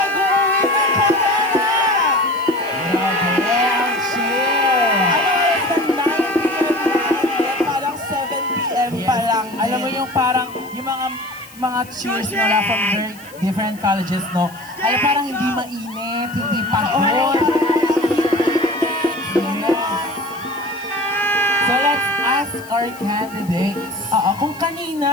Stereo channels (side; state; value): left; noise; hiss, 21 dB below the sound